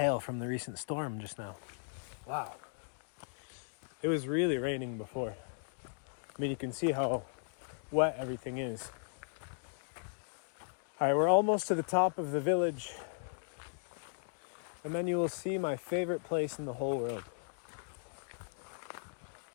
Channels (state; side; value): silent; right; digital silence